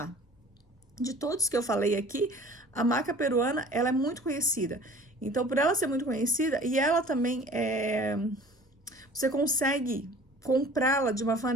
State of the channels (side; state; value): both; normal; correlation 0.47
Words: De todos que eu falei aqui, a maca peruana, ela é muito conhecida. Então, por ela ser muito conhecida, e ela também você consegue comprá-la de uma